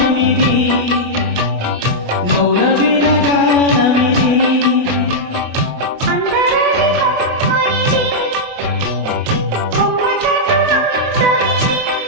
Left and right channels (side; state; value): left; late; 28 ms